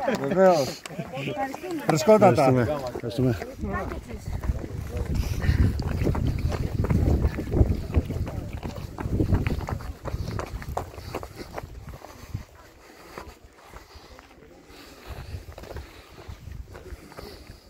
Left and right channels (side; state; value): both; identical; correlation 1.00